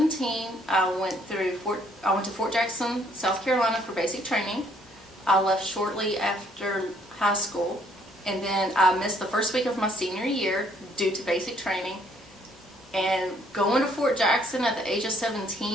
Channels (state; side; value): normal; both; correlation 0.65